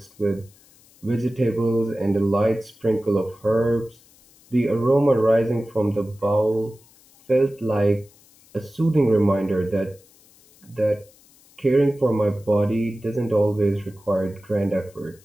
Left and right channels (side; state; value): left; noise; hiss, 28 dB below the sound